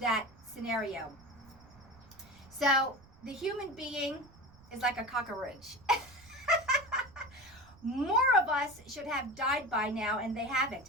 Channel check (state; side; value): noise; right; rumble, 24 dB below the sound